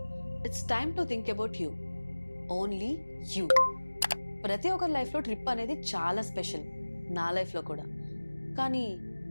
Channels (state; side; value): inverted; both; correlation -1.00